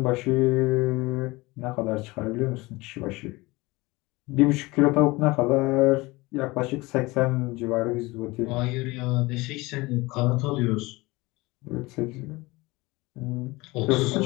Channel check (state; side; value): quieter; right; 22.2 dB